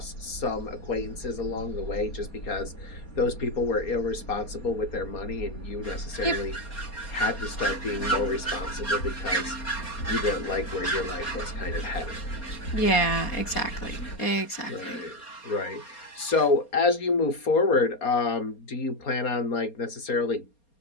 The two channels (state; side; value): late; right; 4.3 ms